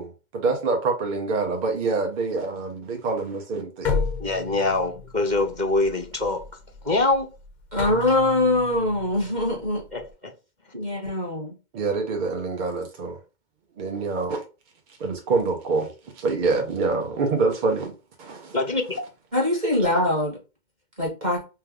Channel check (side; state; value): left; late; 2.1 ms